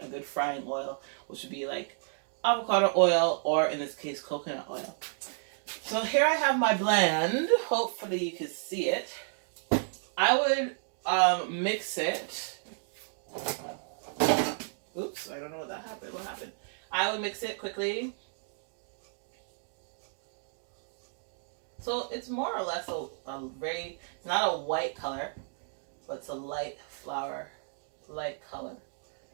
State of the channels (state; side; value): silent; left; digital silence